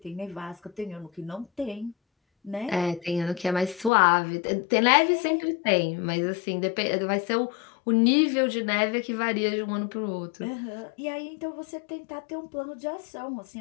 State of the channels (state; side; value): drops out; right; at 3.9 s